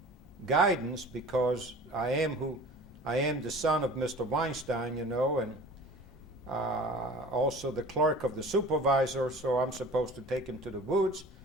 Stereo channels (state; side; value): normal; both; correlation 0.42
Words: guidance because I am the son of Mr. Winestone, and also the clerk of the supervisor, so I'm supposed to take him to the woods.